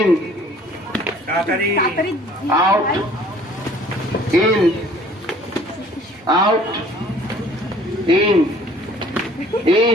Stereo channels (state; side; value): normal; both; correlation 0.54